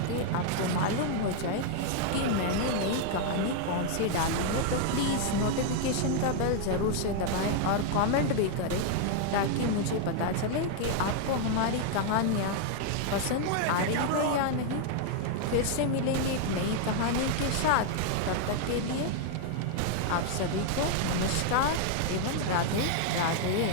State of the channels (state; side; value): different; both; correlation 0.00